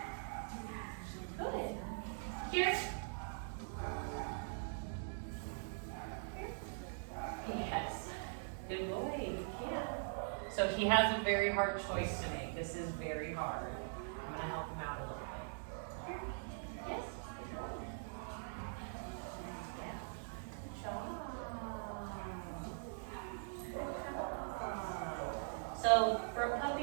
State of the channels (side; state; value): left; silent; digital silence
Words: Good. Here. Yes. Good boy. Yeah. So he has a very hard choice to make. This is very hard. I'm going to help him out a little bit. Here. Yes. Good boy. Yeah. Good job. So for a